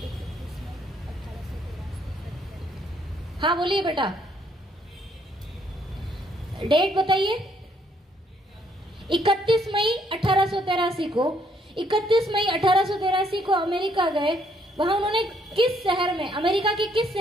हाँ बोलिए बेटा, डेट बताइए। 31 मई 1883 को 31 मई 1883 को अमेरिका गए। वहां उन्होंने किस शहर में, अमेरिका के किस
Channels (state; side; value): normal; both; correlation 0.69